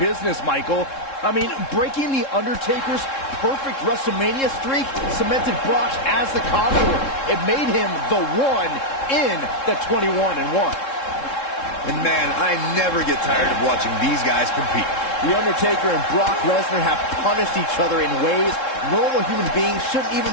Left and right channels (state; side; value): late; right; 3.7 ms